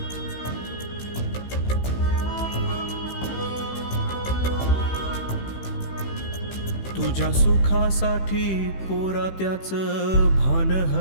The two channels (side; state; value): right; late; 15 ms